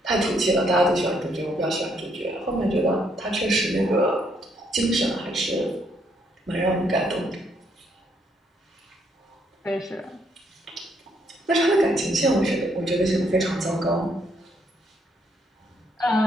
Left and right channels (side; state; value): both; normal; correlation 0.72